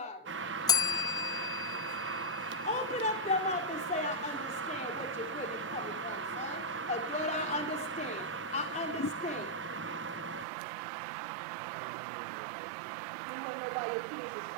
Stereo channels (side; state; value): left; drops out; at 10.5 s